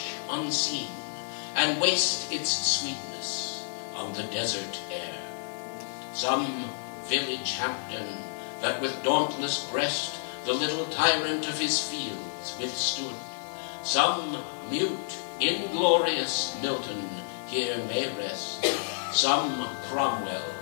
unseen, and waste its sweetness on the desert air. Some village Hampden that with dauntless breast the little tyrant of his fields withstood. Some mute, inglorious Milton here may rest. Some Cromwell,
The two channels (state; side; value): silent; right; digital silence